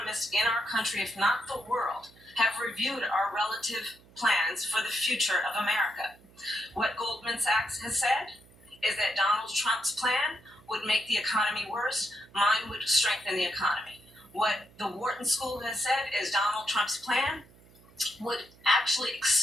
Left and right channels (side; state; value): right; noise; hum, 26 dB below the sound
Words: in our country, if not the world, have reviewed our relative plans for the future of America. What Goldman Sachs has said is that Donald Trump's plan would make the economy worse, mine would strengthen the economy. What the Wharton School has said is Donald Trump's plan would actually